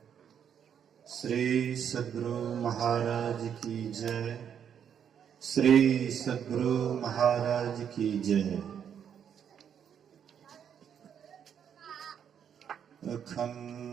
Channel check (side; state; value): left; quieter; 8.4 dB